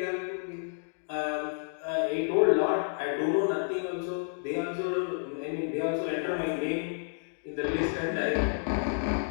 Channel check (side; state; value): right; silent; digital silence